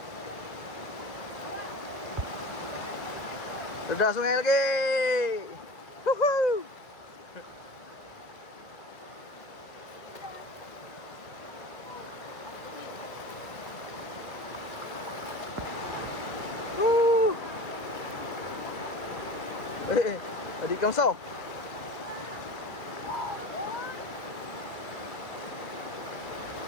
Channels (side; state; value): right; late; 1.9 ms